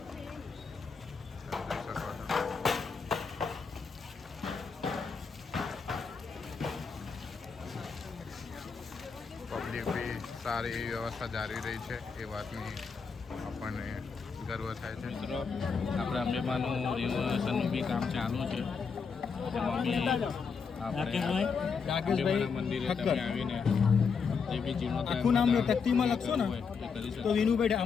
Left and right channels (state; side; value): quieter; right; 5.6 dB